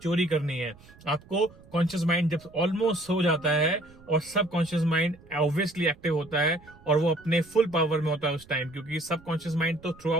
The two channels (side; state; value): right; noise; rumble, 24 dB below the sound